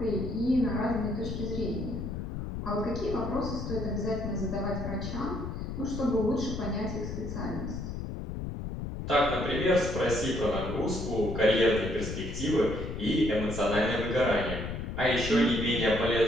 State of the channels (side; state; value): left; noise; rumble, 5 dB below the sound